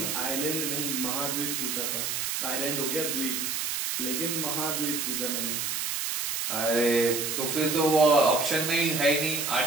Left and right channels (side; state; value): right; noise; hiss, 1 dB below the sound